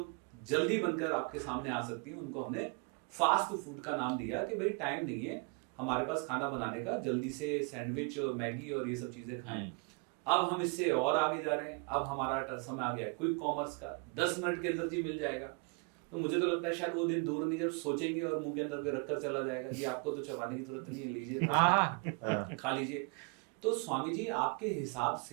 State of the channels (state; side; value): quieter; left; 36.7 dB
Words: जल्दी बनकर आपके सामने आ सकती हैं, उनको हमने फास्ट फूड का नाम दिया कि भाई टाइम नहीं है हमारे पास खाना बनाने का, जल्दी से सैंडविच और मैगी और ये सब चीज़ें खाएं। अब हम इससे और आगे जा रहे हैं, अब हमारा समय आ गया है क्विक कॉमर्स का, 10 मिनट के अंदर जी मिल जाएगा। तो मुझे तो लगता है शायद वो दिन दूर नहीं जब सोचेंगे और मुंह के अंदर कोई रखकर चला जाएगा, जी आपको तो चबाने की जरूरत नहीं है, लीजिए भाई साहब, खा लीजिए। तो स्वामी जी, आपके हिसाब